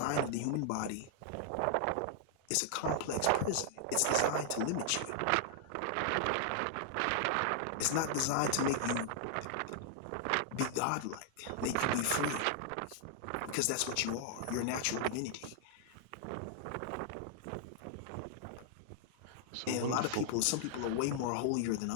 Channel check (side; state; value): both; different; correlation -0.01